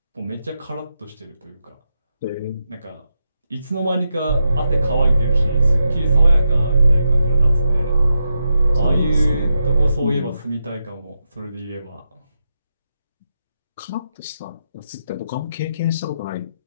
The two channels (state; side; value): inverted; both; correlation -0.85